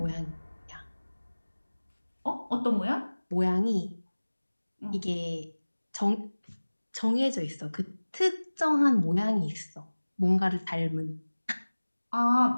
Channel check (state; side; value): inverted; both; correlation -1.00